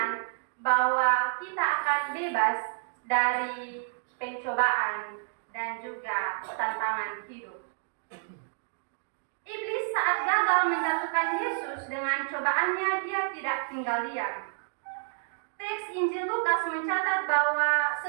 bahwa kita akan bebas dari pencobaan dan juga tantangan hidup. Iblis saat gagal menjatuhkan Yesus dengan cobaannya, dia tidak tinggal diam. Teks Injil Lukas mencatat bahwa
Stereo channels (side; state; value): left; silent; digital silence